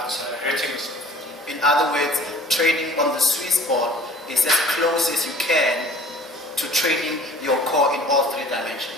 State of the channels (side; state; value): both; normal; correlation 0.48